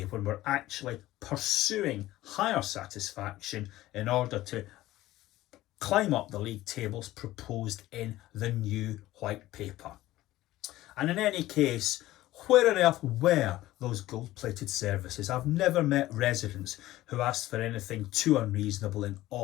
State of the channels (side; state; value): right; quieter; 16.1 dB